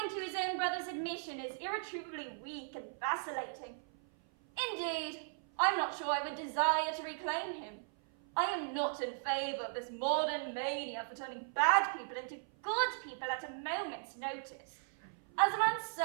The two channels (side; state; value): left; silent; 53 dB below the other